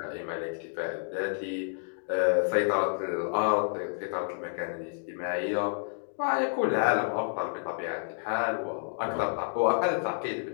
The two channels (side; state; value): right; silent; digital silence